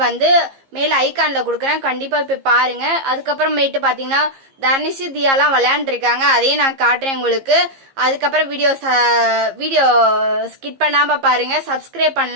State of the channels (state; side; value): late; left; 15 ms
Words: மேல ஐகான்ல கொடுக்குறேன், கண்டிப்பா போய் பாருங்க. அதுக்கப்புறமேட்டு பாத்தீங்கன்னா தர்னிஷ் தியாலாம் விளையாண்டுருக்காங்க, அதையும் நான் காட்டுறேன் உங்களுக்கு. அதுக்கப்புறம் வீடியோ ஸ்கிப் பண்ணாம பாருங்க. சப்ஸ்கிரைப்